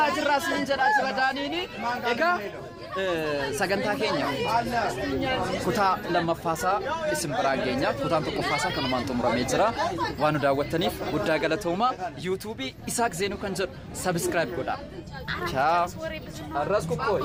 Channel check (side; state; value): both; identical; correlation 1.00